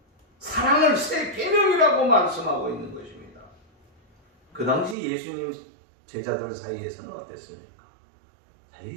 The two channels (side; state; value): left; drops out; at 5.0 s